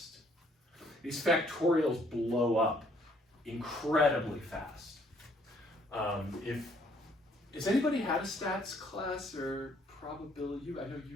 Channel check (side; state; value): both; normal; correlation 0.64